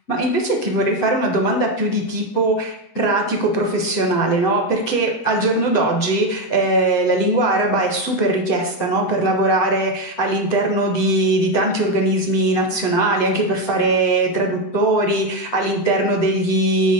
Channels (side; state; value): right; late; 7.9 ms